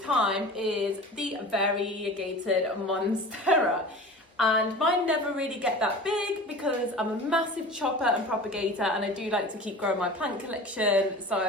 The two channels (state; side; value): normal; both; correlation 0.37